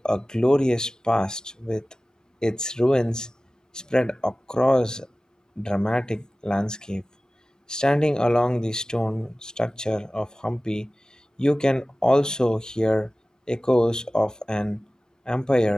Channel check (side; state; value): both; normal; correlation 0.97